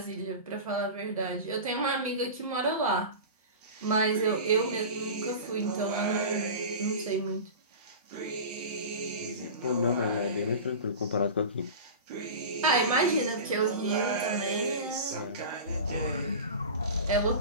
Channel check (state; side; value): inverted; both; correlation -0.31